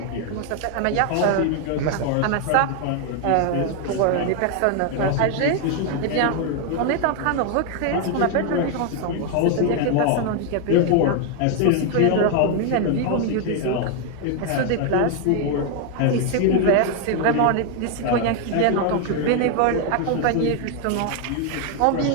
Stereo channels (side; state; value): both; different; correlation 0.00